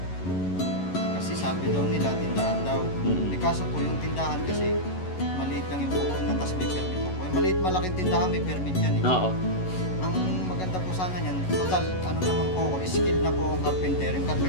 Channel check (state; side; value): late; right; 11 ms